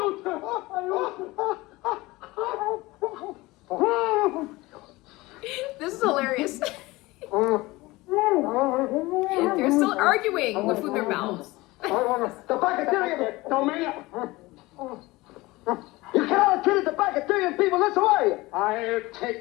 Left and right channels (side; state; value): right; quieter; 20.8 dB